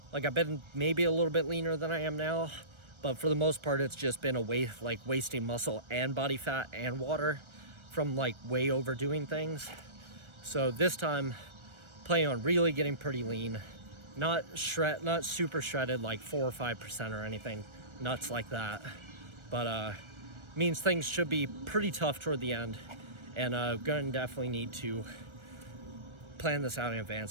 I've been maybe a little bit leaner than I am now, but for the most part it's just been wasting muscle and body fat and water from like way overdoing things. So this time planning on really getting pretty lean, not super shredded like 4 or 5% or anything nuts like that, but means things should be pretty tough toward the end, and gonna definitely need to plan this out in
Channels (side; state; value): left; late; 1.3 ms